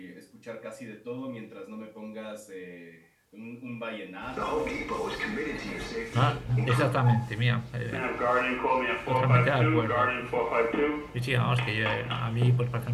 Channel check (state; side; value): identical; both; correlation 1.00